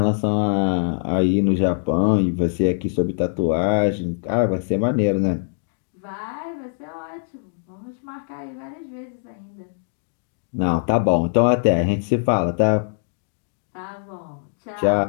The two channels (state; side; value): silent; right; digital silence